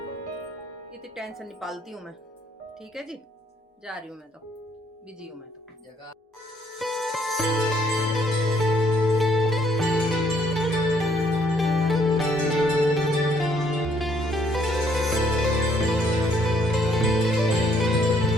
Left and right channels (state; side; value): normal; both; correlation 0.66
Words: इतनी टेंशन नहीं पालती हूँ मैं। ठीक है जी, जा रही हूँ मैं, तो बिजी हूँ मैं तो। जगह